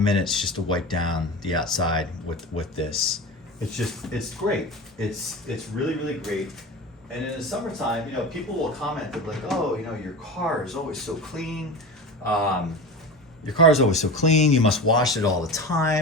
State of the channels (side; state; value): both; normal; correlation 0.29